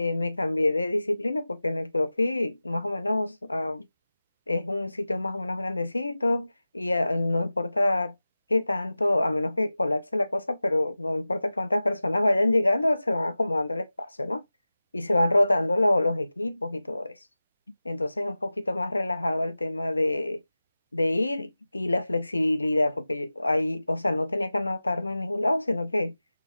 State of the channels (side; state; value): both; inverted; correlation -0.96